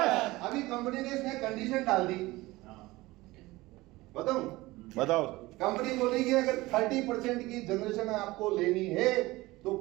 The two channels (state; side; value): quieter; left; 19.8 dB